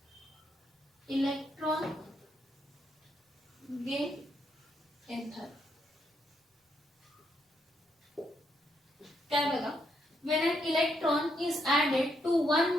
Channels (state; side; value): normal; both; correlation 0.77